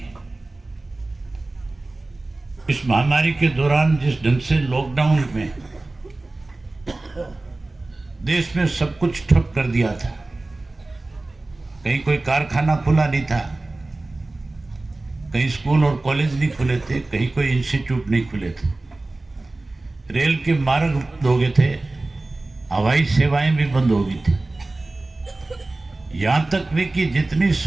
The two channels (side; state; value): left; quieter; 3.0 dB